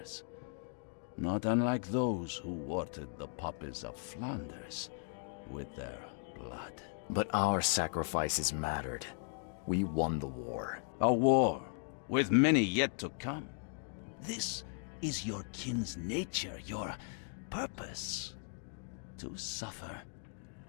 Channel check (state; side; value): silent; right; 53 dB below the other